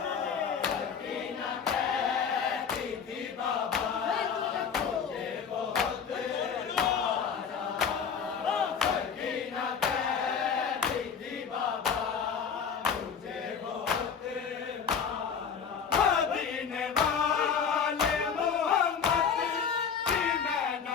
सकीना कहती थी बाबा मुझे बहुत मारा। सकीना कहती थी बाबा मुझे बहुत मारा। मदीने वाले मोहम्मद की मैं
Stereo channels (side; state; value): right; quieter; 6.8 dB